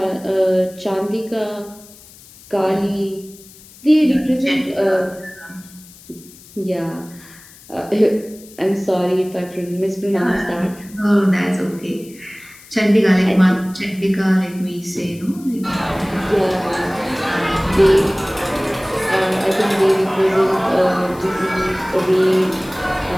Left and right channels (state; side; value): noise; left; hiss, 22 dB below the sound